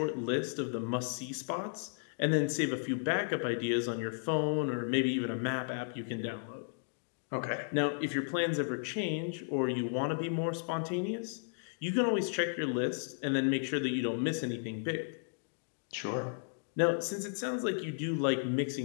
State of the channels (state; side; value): silent; right; digital silence